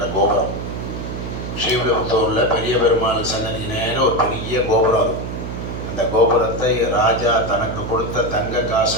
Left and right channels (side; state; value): right; noise; hum, 6 dB below the sound